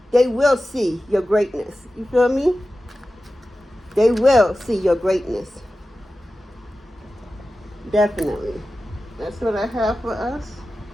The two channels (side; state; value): both; normal; correlation 0.94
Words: They will see your greatness. You feel me? They will see your greatness. Definitely. That's what I have for us.